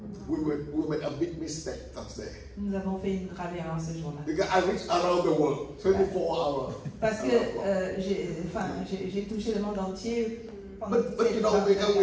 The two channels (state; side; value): identical; both; correlation 1.00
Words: We made a big mistake that day. Nous avons fait une grave erreur ce jour-là. Because I reached around the world, 24 hours. Parce que j'ai touché le monde entier. pendant But you know, because